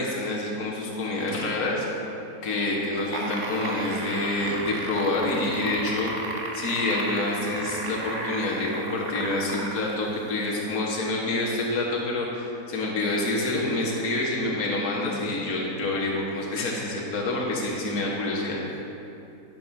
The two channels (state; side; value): late; right; 4.4 ms